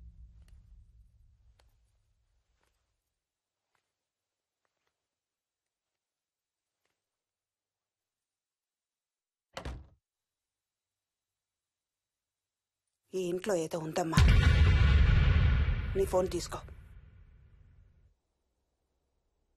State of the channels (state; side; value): identical; both; correlation 1.00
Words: ఈ ఇంట్లో ఏదో ఉందమ్మా. నీ ఫోన్ తీసుకో.